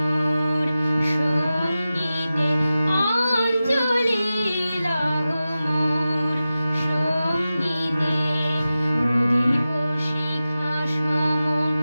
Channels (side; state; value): both; inverted; correlation -0.94